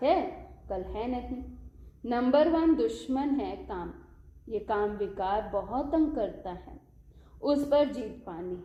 है कल है नहीं। नंबर 1 दुश्मन है काम। ये काम विकार बहुत तंग करता है, उस पर जीत पानी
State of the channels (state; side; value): identical; both; correlation 1.00